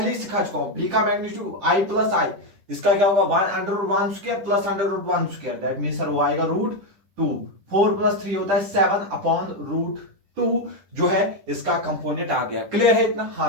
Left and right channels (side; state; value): left; late; 10 ms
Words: ही सिखा चुका हूं, बी का मैग्नीट्यूड आई प्लस आई, इसका क्या होगा 1 under root 1 square plus under root 1 square, that mean sir वो आएगा रूट 2। 4 प्लस 3 होता है 7 अपॉन रूट 2 जो है इसका कंपोनेंट आ गया। क्लियर है इतना?